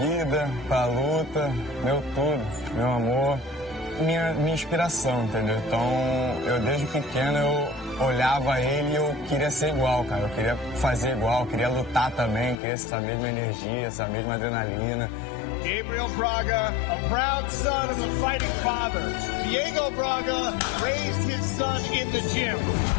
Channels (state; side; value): drops out; right; at 12.6 s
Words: pra luta, meu tudo, meu amor, minha inspiração, entendeu? Então, eu desde pequeno, eu olhava ele e eu queria ser igual, cara. Eu queria fazer igual, eu queria lutar também, queria essa mesma energia, essa mesma adrenalina. Gabriel Braga, a proud son of a fighting father. Diego Braga raised his son in the gym.